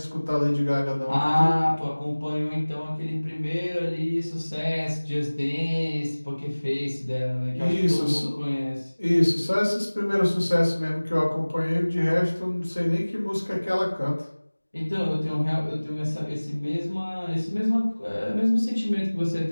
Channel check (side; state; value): both; inverted; correlation -1.00